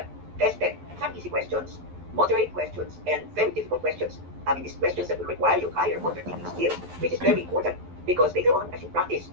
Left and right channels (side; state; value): left; late; 11 ms